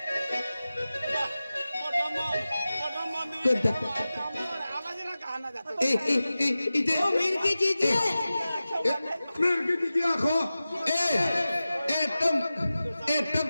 कोणता आवाजाला गाणं जातो इथे मिरकी चीज मेरे की आखो तुम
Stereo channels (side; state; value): both; inverted; correlation -0.95